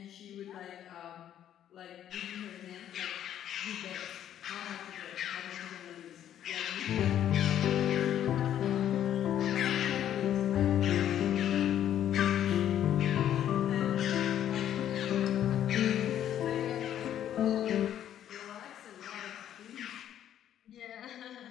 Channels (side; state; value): right; quieter; 10.7 dB